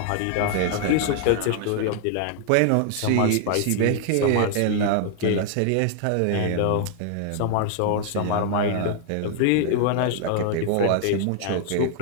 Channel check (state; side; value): different; both; correlation 0.00